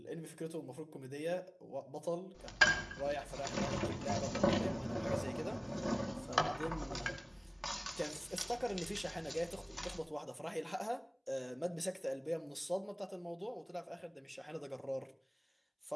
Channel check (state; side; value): identical; both; correlation 1.00